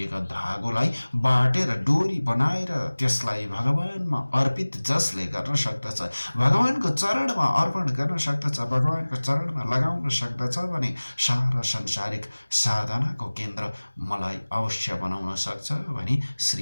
धागोलाई बाटेर डोरी बनाएर त्यसलाई भगवानमा अर्पित जसले गर्न सक्दछ, भगवानको चरणमा अर्पण गर्न सक्दछ, भगवानको चरणमा लगाउन सक्दछ भने सारा संसारिक साधनाको केन्द्र मलाई अवश्य बनाउन सक्छ भनी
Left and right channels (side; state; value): both; inverted; correlation -1.00